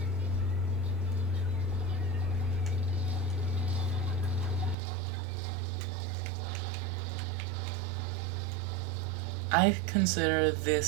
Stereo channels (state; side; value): drops out; left; at 4.8 s